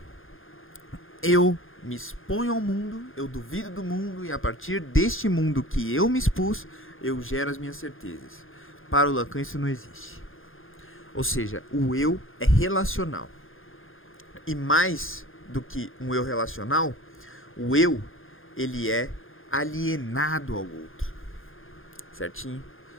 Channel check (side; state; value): right; late; 0.59 ms